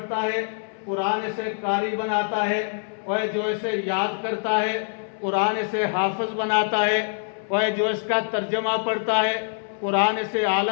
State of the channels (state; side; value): silent; right; 62 dB below the other